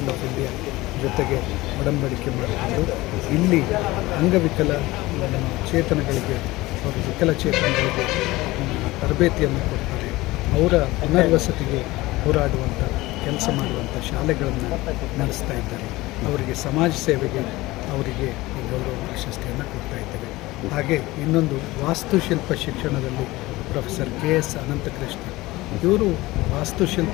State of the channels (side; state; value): right; quieter; 19.5 dB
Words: ಆಫ್ ಇಂಡಿಯಾ ಜೊತೆಗೆ ಒಡಂಬಡಿಕೆ ಮಾಡಿಕೊಂಡು ಇಲ್ಲಿ ಅಂಗವಿಕಲ ಚೇತನಗಳಿಗೆ ಹಾಗೂ ವಿಕಲಚೇತನಗಳಿಗೆ ತರಬೇತಿಯನ್ನು ಕೊಡ್ತಾರೆ. ಅವರ ಪುನರ್ವಸತಿಗೆ ಹೋರಾಡುವಂಥ ಕೆಲಸ ಮಾಡುವಂಥ ಶಾಲೆಗಳನ್ನು ನಡೆಸ್ತಾ ಇದ್ದಾರೆ. ಅವರಿಗೆ ಸಮಾಜ ಸೇವೆಗೆ ಅವರಿಗೆ ಗೌರವ ಪ್ರಶಸ್ತಿಯನ್ನು ಕೊಡ್ತಾ ಇದ್ದೇವೆ. ಹಾಗೆ ಇನ್ನೊಂದು ವಾಸ್ತುಶಿಲ್ಪ ಶಿಕ್ಷಣದಲ್ಲಿ ಪ್ರೊಫೆಸರ್ KS ಅನಂತಕೃಷ್ಣ ಇವರು